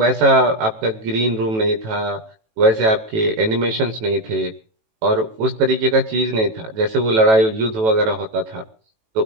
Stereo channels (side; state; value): left; late; 18 ms